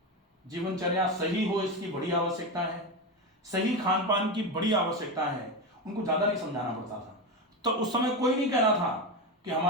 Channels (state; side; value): normal; both; correlation 0.16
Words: जीवनचर्या सही हो इसकी बड़ी आवश्यकता है, सही खान पान की बड़ी आवश्यकता है। उनको ज्यादा नहीं समझाना पड़ता था। तो उस समय कोई नहीं कह रहा था कि